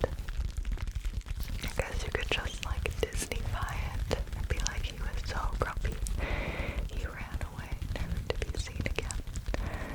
I guess you could just like Disneyfy it and be like, he was so grumpy, he ran away, never to be seen again.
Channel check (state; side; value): identical; both; correlation 1.00